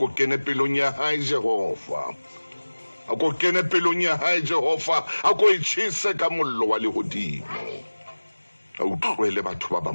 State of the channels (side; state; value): both; inverted; correlation -1.00